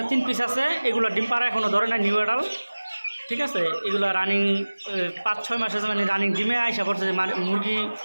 3 পিস আছে, এগুলো ডিম পাড়া এখনও ধরে না, নিউ এডাল। ঠিক আছে, এগুলো রানিং 5-6 মাস আছে, মানে রানিং ডিমে আইসা পড়ছে, যে মুরগি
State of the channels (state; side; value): inverted; both; correlation -1.00